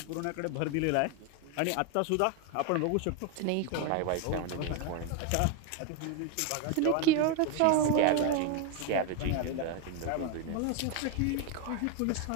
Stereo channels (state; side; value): different; both; correlation 0.01